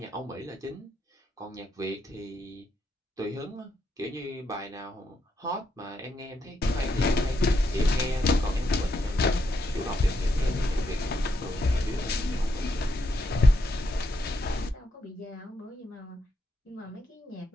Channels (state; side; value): normal; both; correlation 0.79